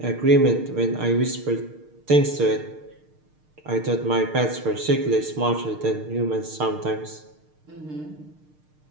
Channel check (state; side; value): late; left; 6.6 ms